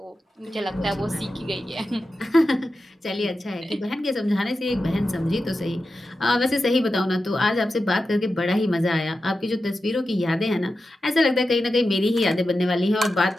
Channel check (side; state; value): both; normal; correlation 0.91